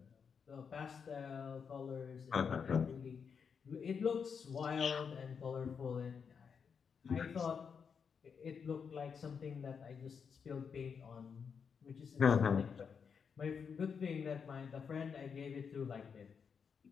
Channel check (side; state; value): right; quieter; 6.4 dB